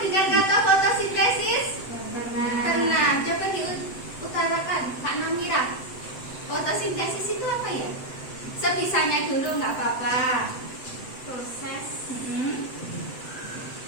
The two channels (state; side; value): late; right; 7.8 ms